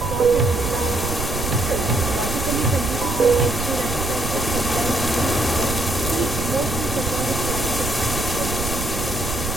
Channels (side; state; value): right; noise; rumble, 5 dB below the sound